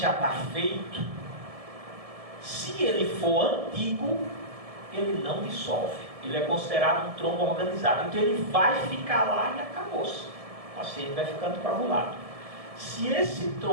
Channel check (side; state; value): left; late; 1.7 ms